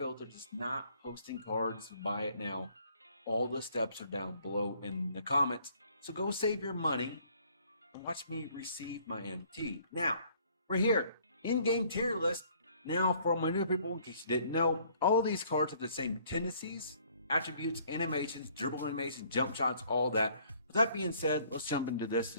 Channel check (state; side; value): inverted; both; correlation -0.60